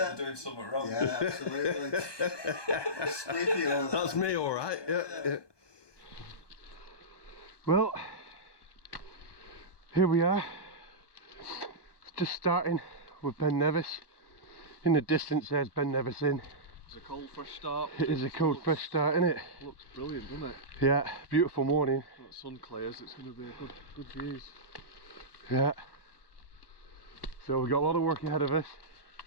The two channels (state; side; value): late; right; 1.2 ms